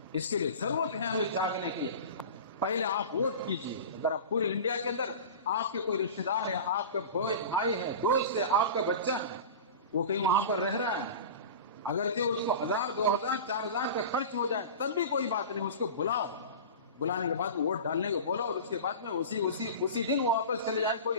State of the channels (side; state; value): both; inverted; correlation -0.33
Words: اس کے لیے ضرورت ہے ہمیں جاگنے کی. پہلے آپ ووٹ کیجیے. اگر آپ پورے انڈیا کے اندر آپ کے کوئی رشتے دار ہے، آپ کا بھائی ہے، دوست ہے، آپ کا بچہ وہ کہیں وہاں پر رہ رہا ہے، اگرچہ اس کو 1000 2000 4000 کا خرچ ہو جائے تب بھی کوئی بات نہیں، اس کو بلاؤ. بلانے کے بعد ووٹ ڈالنے کو بولو، اور اس کے بعد میں اسی دن وہ واپس چلے جائے، کوئی